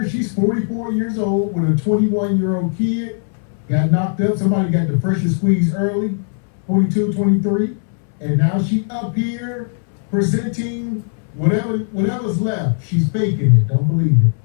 she's 44 years old with a 21-year-old kid. Got knocked up. Somebody got the freshest squeeze early, 22, 23. And now she up here presenting whatever's left. She's faking it. Don't believe it.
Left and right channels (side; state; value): right; silent; 65 dB below the other